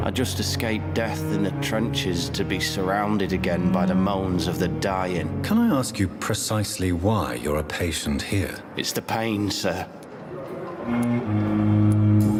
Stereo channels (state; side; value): identical; both; correlation 1.00